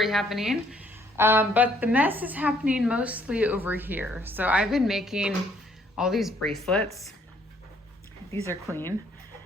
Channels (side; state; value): both; normal; correlation 0.65